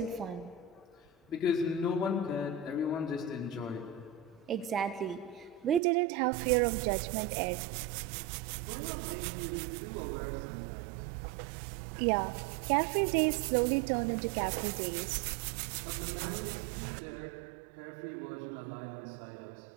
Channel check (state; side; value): drops out; left; at 5.8 s